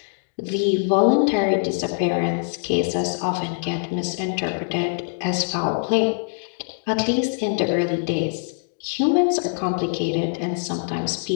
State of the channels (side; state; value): right; silent; digital silence